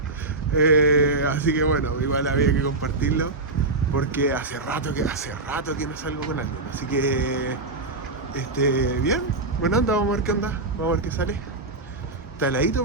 Así que bueno, igual había que compartirlo, porque hace rato que no salgo con alguien. Así que bien, bueno, anda, vamos a ver qué onda, vamos a ver qué sale. Está heladito,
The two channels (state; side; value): quieter; left; 3.2 dB